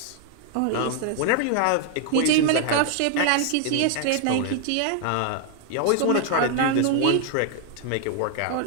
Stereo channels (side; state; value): both; different; correlation 0.00